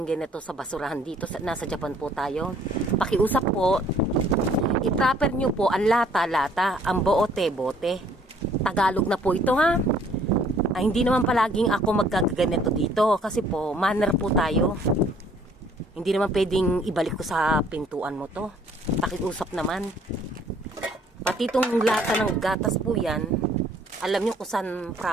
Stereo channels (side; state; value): both; normal; correlation 0.60